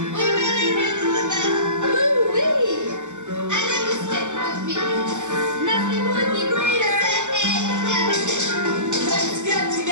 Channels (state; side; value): late; left; 0.85 ms